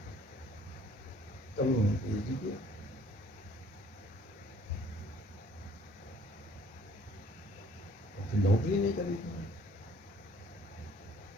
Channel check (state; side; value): normal; both; correlation 0.58